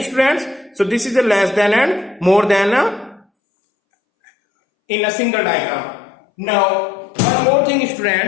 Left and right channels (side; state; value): right; drops out; at 3.2 s